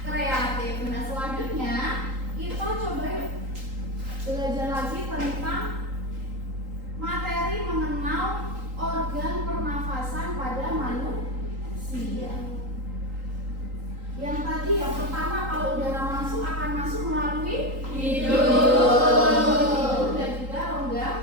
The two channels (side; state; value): left; late; 3.8 ms